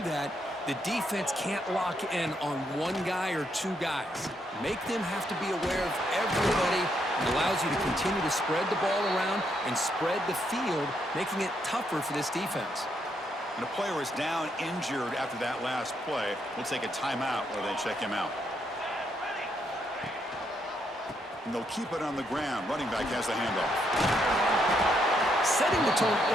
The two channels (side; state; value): both; normal; correlation 0.76